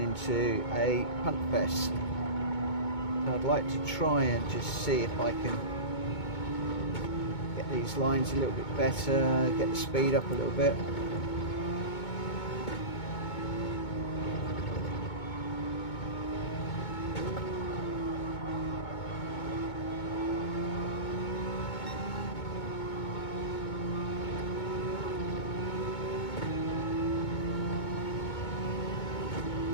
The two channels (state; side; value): late; right; 2.2 ms